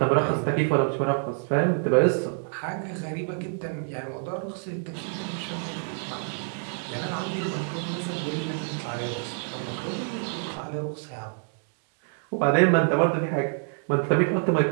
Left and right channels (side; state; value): left; silent; 60 dB below the other